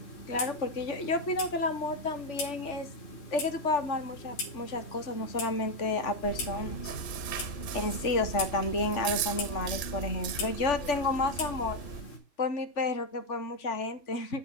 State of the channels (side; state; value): right; late; 3.4 ms